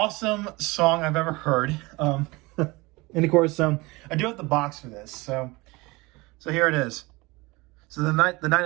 song I've ever heard. And of course, I do have the box for this. So here it is. So the night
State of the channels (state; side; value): quieter; left; 23.5 dB